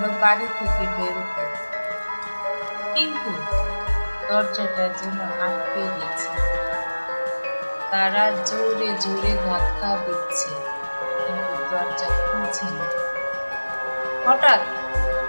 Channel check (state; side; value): inverted; both; correlation -1.00